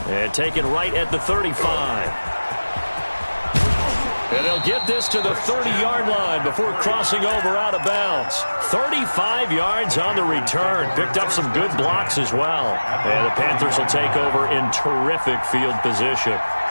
And taken right at the 35. And they'll get this to the 30-yard line before crossing over out of bounds. 35 yards on the return. Picked up some good blocks as well. And the Panthers will take over in terrific field position.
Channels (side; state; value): both; inverted; correlation -1.00